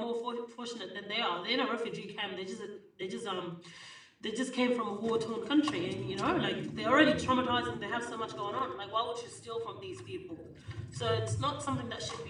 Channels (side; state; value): both; identical; correlation 1.00